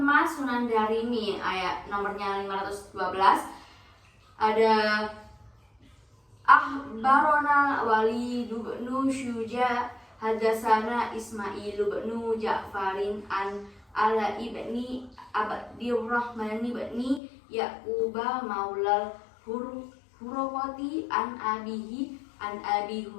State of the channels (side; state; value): right; drops out; at 17.2 s